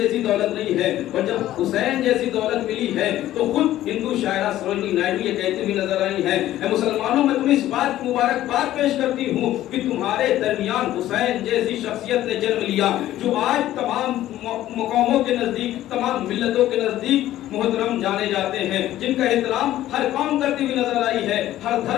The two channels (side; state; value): right; quieter; 13.8 dB